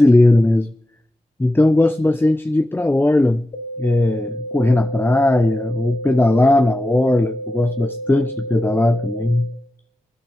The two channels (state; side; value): normal; both; correlation 0.91